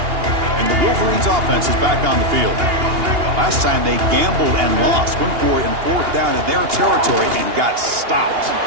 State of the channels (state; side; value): late; left; 2.8 ms